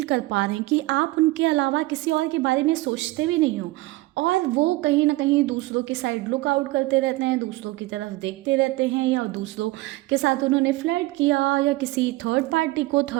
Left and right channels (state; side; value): quieter; left; 19.9 dB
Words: कर पा रहे हैं कि आप उनके अलावा किसी और के बारे में सोचते भी नहीं हो, और वो कहीं ना कहीं दूसरों के साइड लुक आउट करते रहते हैं, दूसरों की तरफ देखते रहते हैं, या दूसरों के साथ उन्होंने फ्लर्ट किया, या किसी थर्ड पार्टी को,